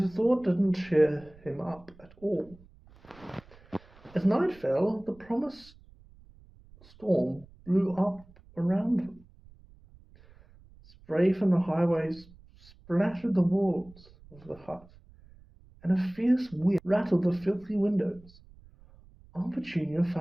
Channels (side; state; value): right; noise; rumble, 25 dB below the sound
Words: thought didn't cheer him up at all. As night fell, the promised storm blew up around them. Spray from the highways splattered the walls of the hut, and a fierce wind rattled the filthy windows. Aunt Petunia